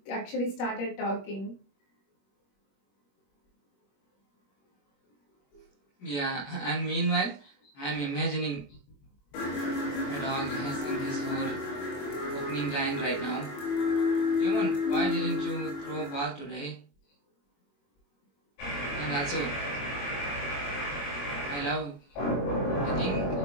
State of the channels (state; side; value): late; right; 21 ms